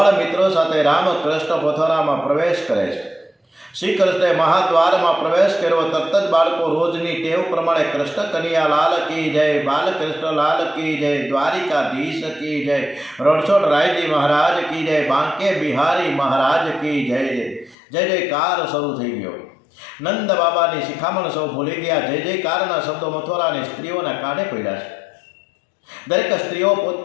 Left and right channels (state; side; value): drops out; right; at 17.8 s